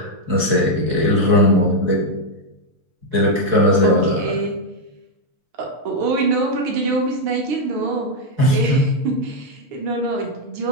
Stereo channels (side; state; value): left; late; 6.7 ms